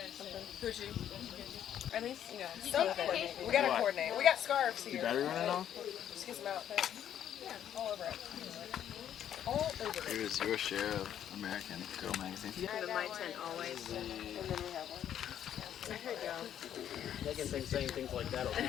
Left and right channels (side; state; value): right; quieter; 10.1 dB